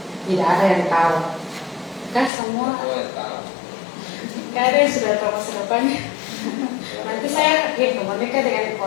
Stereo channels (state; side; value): drops out; right; at 2.3 s